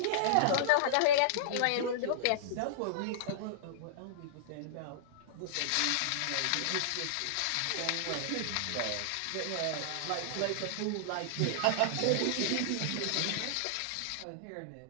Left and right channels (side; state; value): both; different; correlation -0.01